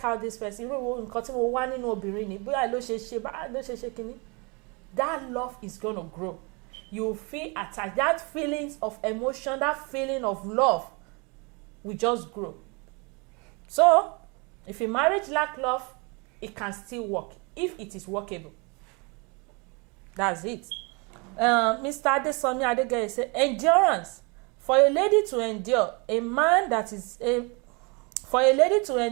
how this person irú nǹkan tí mo wá nínú obìnrin ni bóyá ló ṣe kíní. That love is gonna grow. You feel attached. That feelings of emotion, that feeling of love will just grow. So, if a marriage lack love, it can still work if it is workable. That's it. Mr. Adesomi Adegeye said, endurance. For a lady to endure a man that is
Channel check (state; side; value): quieter; left; 30.7 dB